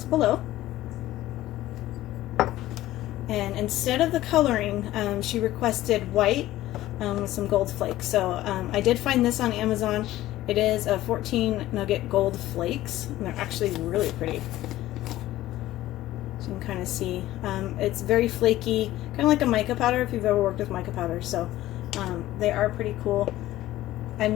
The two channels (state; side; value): quieter; right; 15.4 dB